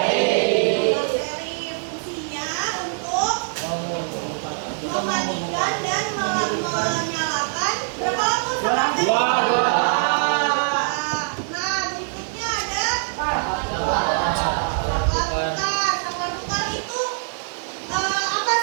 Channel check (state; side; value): silent; left; 59 dB below the other